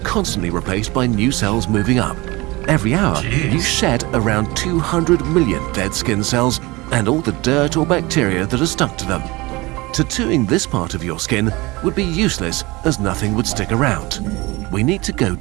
replaced by new cells moving up. Every hour, Jeez. you shed around 200 million dead skin cells and all the dirt or bacteria that are stuck to them. Tattooing this part of your skin would be useless as nothing would stick around. We need to go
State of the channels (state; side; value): quieter; left; 22.7 dB